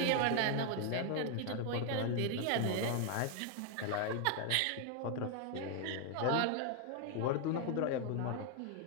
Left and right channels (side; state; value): both; different; correlation 0.01